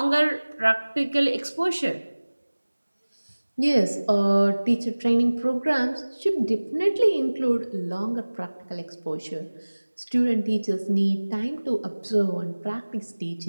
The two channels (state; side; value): inverted; both; correlation -1.00